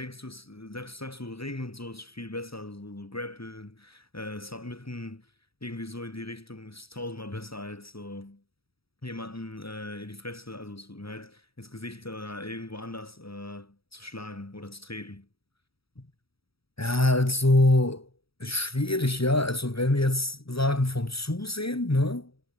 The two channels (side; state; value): right; late; 0.76 ms